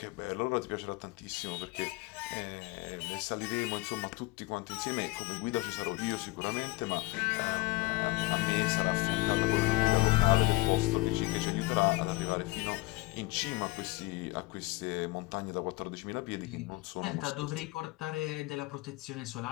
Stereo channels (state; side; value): quieter; right; 21.6 dB